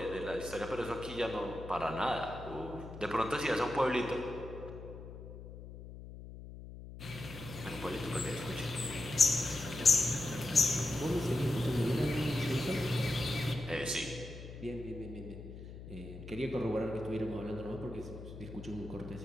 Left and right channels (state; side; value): noise; left; hum, 12 dB below the sound